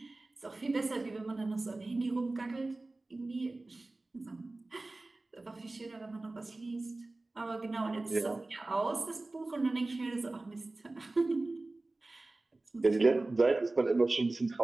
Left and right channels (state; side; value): quieter; left; 3.1 dB